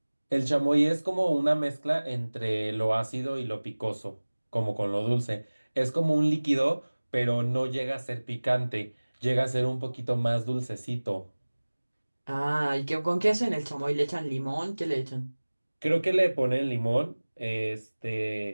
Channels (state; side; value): inverted; both; correlation -1.00